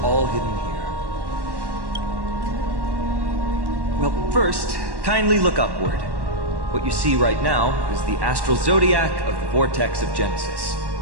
all hidden here. Well, first, kindly look upward. What you see right now is the astral zodiac of the Vortex of Genesis.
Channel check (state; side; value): late; left; 1.1 ms